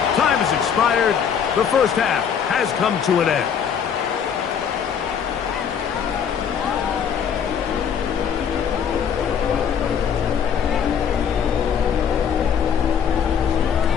Time has expired. The first half has come to an end.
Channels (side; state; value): right; quieter; 7.7 dB